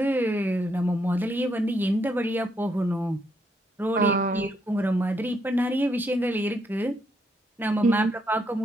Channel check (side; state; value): both; normal; correlation 0.76